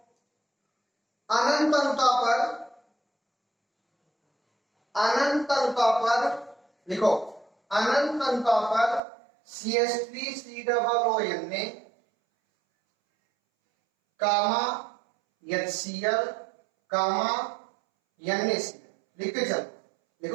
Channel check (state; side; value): drops out; left; at 9.0 s